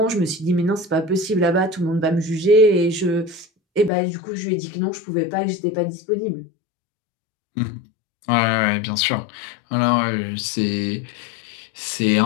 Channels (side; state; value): right; drops out; at 3.9 s